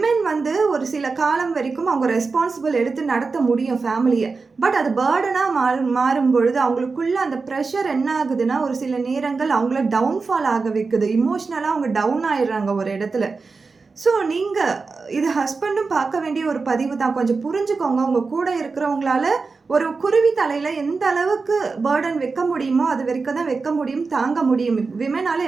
வந்து ஒரு சில காலம் வரைக்கும் அவங்க ரெஸ்பான்சிபிள் எடுத்து நடத்த முடியும் ஃபேமிலியை. பட் அது பேர்டனாக மாறும் பொழுது அவங்களுக்குள்ள அந்த ப்ரெஷர் என்ன ஆகுதுன்னா, ஒரு சில நேரங்கள் அவங்கள டவுன்ஃபால் ஆக வைக்குது. இமோஷ்னலாக அவங்க டவுன் ஆயிடுறாங்க ஒரு இடத்துல. ஸோ நீங்கள் இது ஹஸ்பண்டும் பார்க்க வேண்டிய ஒரு பதிவு தான். கொஞ்சம் புரிஞ்சுக்கோங்க. உங்கள் கூட இருக்கிறவங்களால ஒரு குருவி தலையில் எந்த அளவுக்கு பேர்டன் வைக்க முடியுமோ அது வரைக்கும் தான் வைக்க முடியும், தாங்க முடியும். விமனால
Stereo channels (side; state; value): left; quieter; 4.4 dB